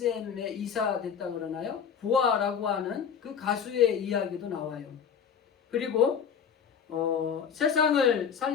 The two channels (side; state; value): right; quieter; 7.3 dB